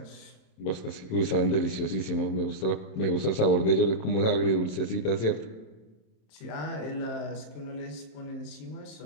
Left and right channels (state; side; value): late; right; 27 ms